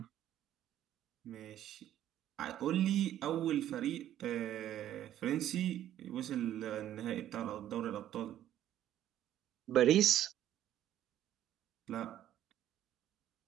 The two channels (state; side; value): quieter; left; 11.9 dB